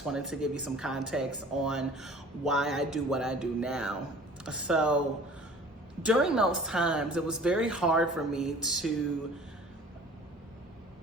wanted to give you some context on why I do what I do now. So during those times, it was very hard for me to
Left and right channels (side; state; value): both; normal; correlation 0.46